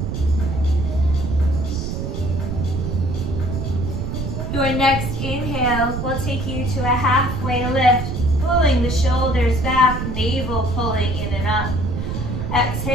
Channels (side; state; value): right; noise; rumble, 3 dB below the sound